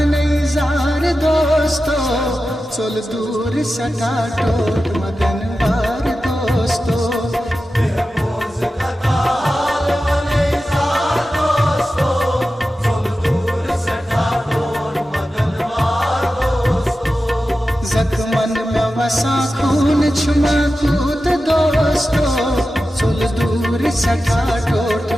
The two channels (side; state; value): both; normal; correlation 0.93